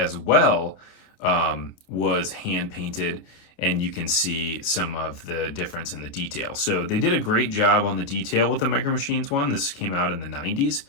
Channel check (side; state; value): right; late; 28 ms